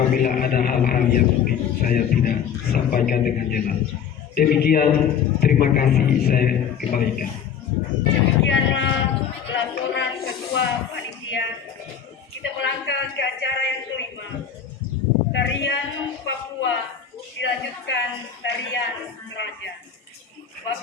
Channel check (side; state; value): right; quieter; 7.9 dB